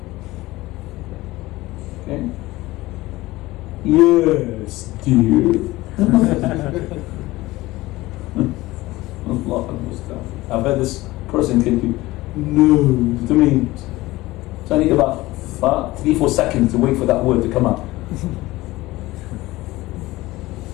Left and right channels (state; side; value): quieter; right; 18.9 dB